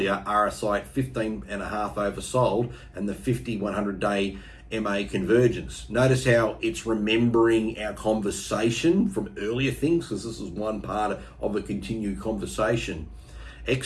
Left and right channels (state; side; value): identical; both; correlation 1.00